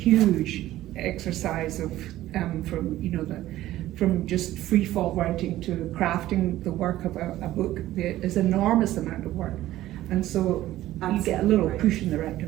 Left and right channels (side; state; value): left; quieter; 14.8 dB